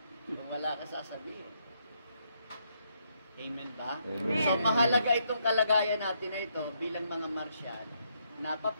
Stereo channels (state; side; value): inverted; both; correlation -0.76